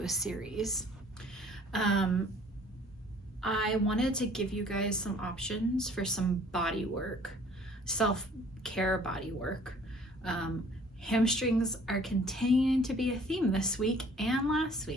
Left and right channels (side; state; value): both; normal; correlation 0.54